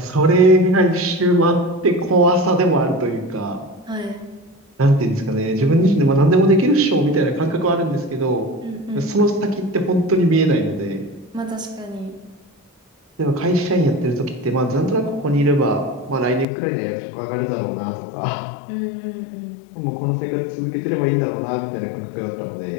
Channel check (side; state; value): right; drops out; at 16.4 s